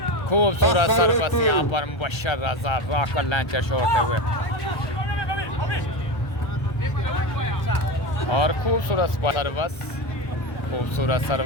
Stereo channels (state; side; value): late; right; 1.3 ms